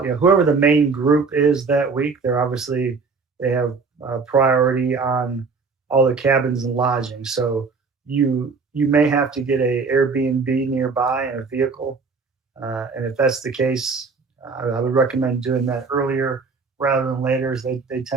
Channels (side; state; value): left; quieter; 4.7 dB